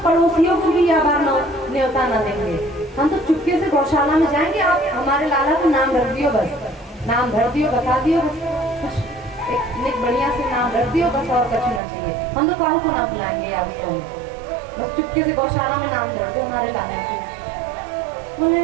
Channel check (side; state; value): left; drops out; at 11.8 s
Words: को भी यह बार न्योता ना देंगे। हम तो चुपके से गौशाला में जाएंगे, आप हमारे लाला को नाम रख दियो, बस नाम भर दियो, बता दियो, बस एक बढ़िया से नाम रख दियो, बस और कुछ ना चाहिए। हम तो काहू को ना बुलाएंगे या उसको, बस चुपके से गौशाला में नाम धर दो हमारे लाला को।